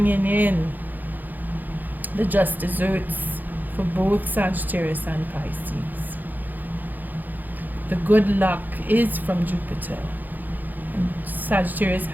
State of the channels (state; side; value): late; left; 0.085 ms